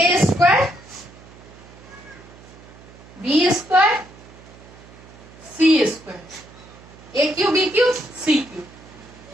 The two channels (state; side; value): noise; right; hum, 21 dB below the sound